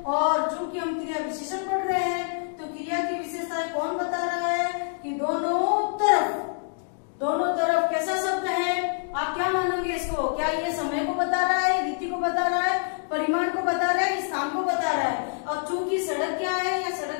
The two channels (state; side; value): silent; right; digital silence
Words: और चूंकि हम क्रिया विशेषण पढ़ रहे हैं तो क्रिया की विशेषताएं कौन बता रहा है कि दोनों तरफ, दोनों तरफ कैसा शब्द है, आप क्या मानोगे इसको, क्या ये समय को बता रहा है, रीति को बता रहा है, परिमाण को बता रहा है, स्थान को बता रहा है। और चूंकि सड़क क्या है, या